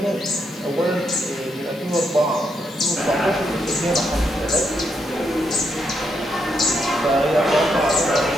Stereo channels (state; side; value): normal; both; correlation 0.79